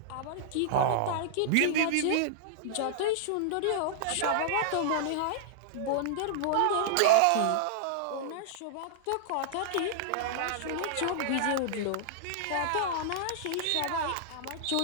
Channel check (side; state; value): both; different; correlation -0.01